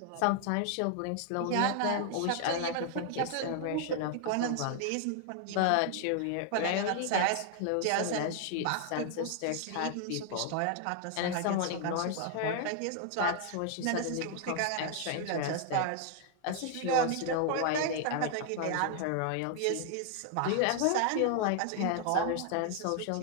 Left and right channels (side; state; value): both; different; correlation 0.00